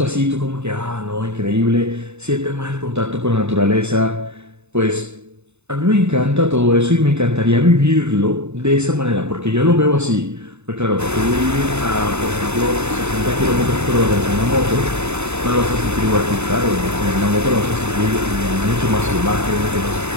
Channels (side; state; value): left; late; 0.81 ms